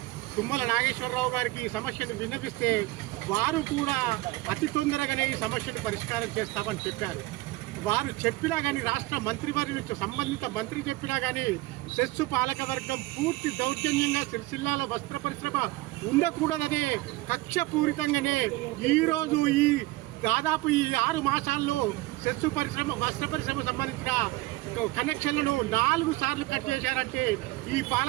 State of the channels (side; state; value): left; quieter; 19.4 dB